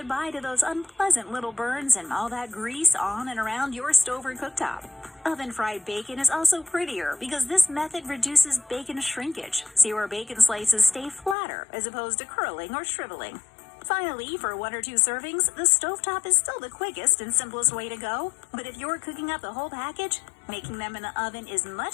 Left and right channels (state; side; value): drops out; right; at 11.4 s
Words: to those unpleasant little burns and all that grease on and around your stove or cooktop. Oven-fried bacon is also prettier because this method reduces bacon shrinkage, so your bacon slices stay flatter as opposed to curling or shriveling. Finally, for 1 or 2 servings, the stovetop is still the quickest and simplest way to go, but if you're cooking up the whole package, making them in the oven is